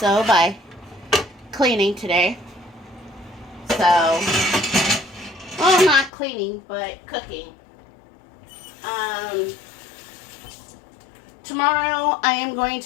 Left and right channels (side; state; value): right; drops out; at 6.1 s